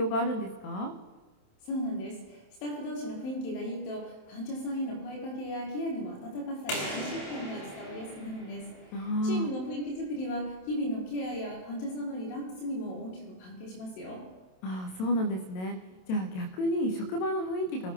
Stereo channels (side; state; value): right; late; 27 ms